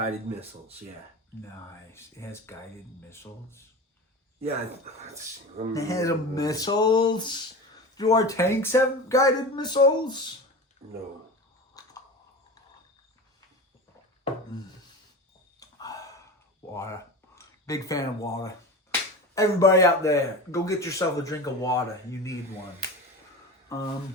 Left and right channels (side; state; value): both; normal; correlation 0.30